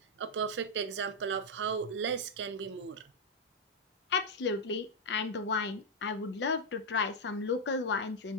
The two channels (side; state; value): both; normal; correlation -0.02